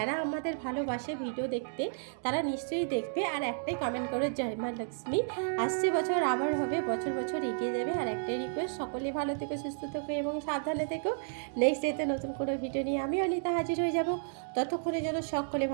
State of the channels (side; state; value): left; silent; digital silence